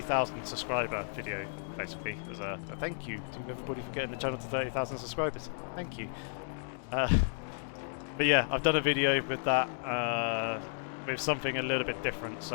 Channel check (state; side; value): silent; right; digital silence